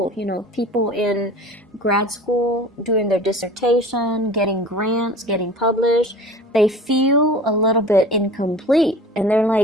You know, people in grad school doing their dissertation, getting grants, getting published, they feel a little bit incomplete. And they're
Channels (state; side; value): normal; both; correlation 0.40